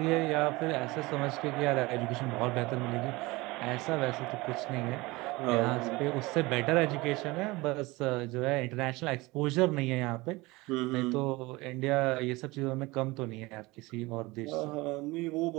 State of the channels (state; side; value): quieter; left; 22.2 dB